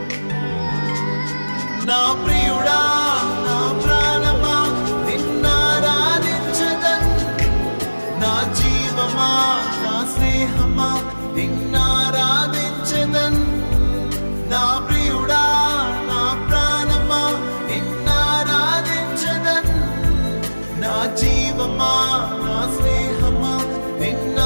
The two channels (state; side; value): inverted; both; correlation -1.00